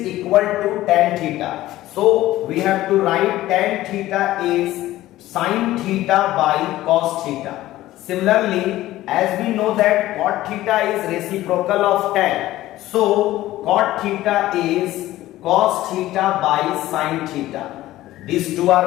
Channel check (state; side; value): quieter; right; 15.6 dB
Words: equal to tan theta. So we have to write tan theta is sin theta by cos theta. Similarly, as we know that cot theta is reciprocal of tan, so cot theta is cos theta by sin theta. These two